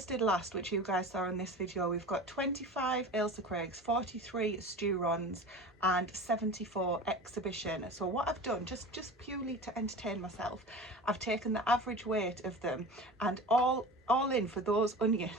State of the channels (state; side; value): normal; both; correlation 0.34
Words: last, which you guys saw in this video. We've got 25 Ailsa Craigs, 43 Sturons and 74 exhibition. So what I've done, just purely to entertain myself, I've taken the average weight of them, and all in for those